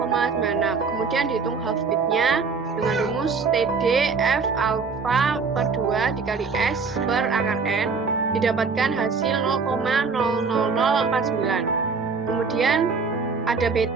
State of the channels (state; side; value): quieter; left; 4.9 dB